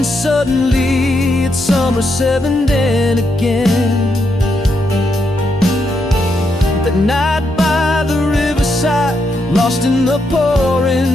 suddenly it's summer 7 then again. That night by the riverside, lost in the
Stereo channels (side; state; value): both; normal; correlation 0.80